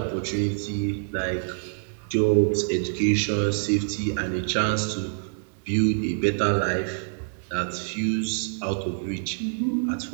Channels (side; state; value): left; silent; 61 dB below the other